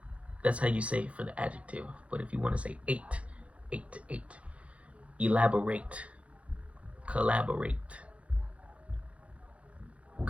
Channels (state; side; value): late; left; 0.063 ms